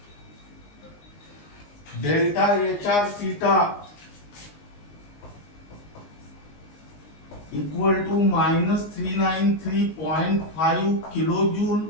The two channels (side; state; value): right; late; 20 ms